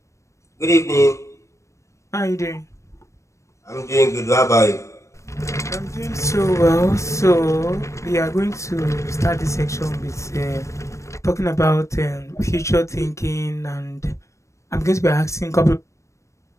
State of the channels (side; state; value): right; late; 0.15 ms